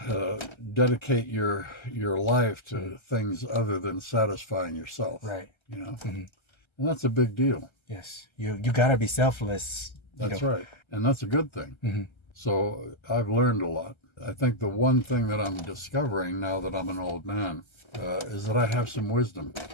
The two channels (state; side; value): late; right; 1.3 ms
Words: dedicate your life to things other than satisfying yourself. Right. You know, and that's a big deal. Yes. You gotta be selfless. That's right, and that's a good thing. So I've learned a lot. I think the one thing that I'm discovering now that I'm an old man is that I have some wisdom.